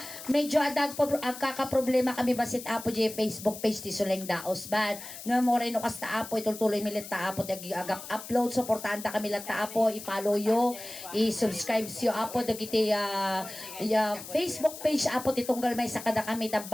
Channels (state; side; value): noise; left; hiss, 12 dB below the sound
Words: medyo adag po ang kakaproblema kami basit apo di Facebook page ti Suleng Daos Band. Nga mo rin no kasta apo ituloy milit ta apo dagi agap upload suportanta kami lat ta apo i-follow yo, i-subscribe yo apo dagiti Facebook page apo titunggal may sakada kami